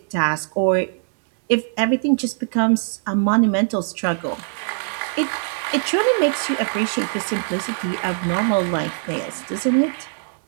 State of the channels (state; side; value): silent; left; digital silence